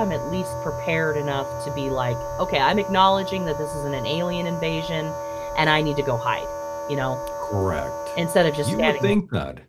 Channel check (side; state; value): both; identical; correlation 1.00